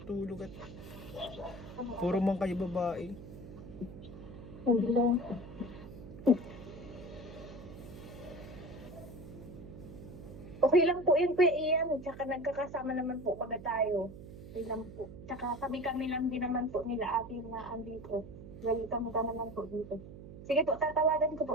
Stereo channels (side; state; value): right; noise; hum, 14 dB below the sound